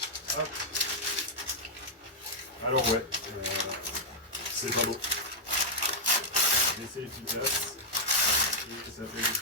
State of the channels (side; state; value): both; normal; correlation -0.03